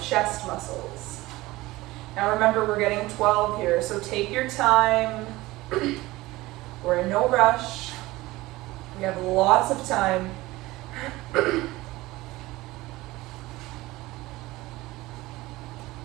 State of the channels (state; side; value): quieter; left; 19.2 dB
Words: chest muscles. Now remember, we're getting 12 here, so take your time. We're in no rush. We have lots of time.